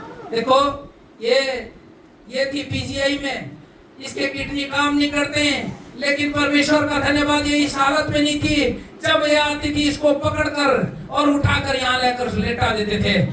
देखो ये थी पीजीआई में, इसके किडनी काम नहीं करते हैं, लेकिन परमेश्वर का धन्यवाद ये इस हालत में नहीं थी। जब ये आती थी इसको पकड़कर और उठाकर यहाँ लेकर लेटा देते थे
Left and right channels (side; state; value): both; identical; correlation 1.00